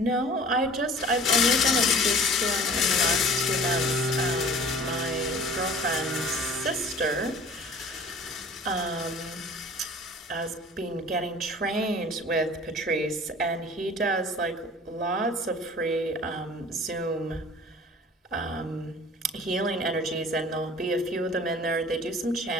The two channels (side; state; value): both; normal; correlation 0.45